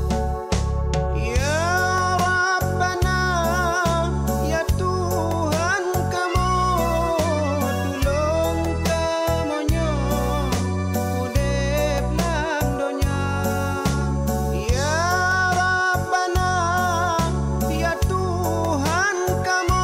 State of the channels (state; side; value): identical; both; correlation 1.00